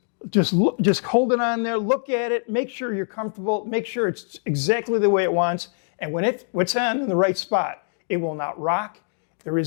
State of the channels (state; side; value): silent; right; 63 dB below the other